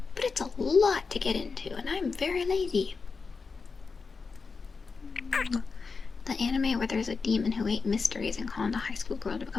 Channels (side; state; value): right; quieter; 4.8 dB